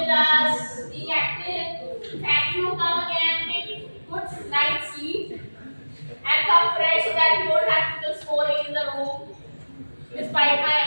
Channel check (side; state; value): both; inverted; correlation -1.00